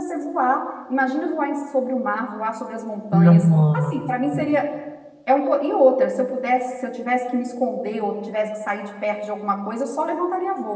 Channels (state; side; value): identical; both; correlation 1.00